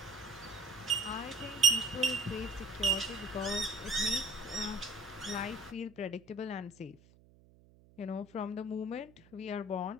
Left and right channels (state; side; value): noise; right; hum, 26 dB below the sound